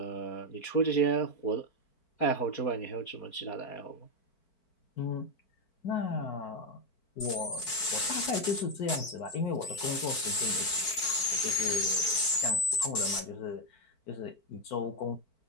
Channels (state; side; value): late; right; 4.7 ms